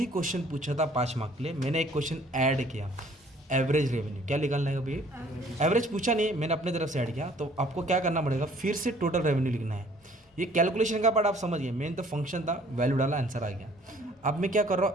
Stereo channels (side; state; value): both; normal; correlation 0.57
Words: क्वेश्चन पूछा था 5 मार्क के लिए, मैंने एक क्वेश्चन ऐड किया, एवरेज रेवेन्यू। क्या निकालना है अभी? एवरेज पूछा नहीं, मैंने अपने तरफ से ऐड किया। तो आपको क्या करना पड़ेगा? फिर से टोटल रेवेन्यू लिखना है। ये कैलकुलेशन का पार्ट आप समझ गए, मेन तो फंक्शन था, वैल्यू डाला, आंसर आ गया। अब मैं क्या कर रहा